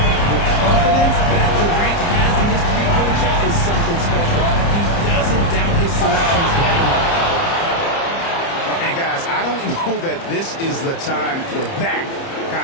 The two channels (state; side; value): late; right; 30 ms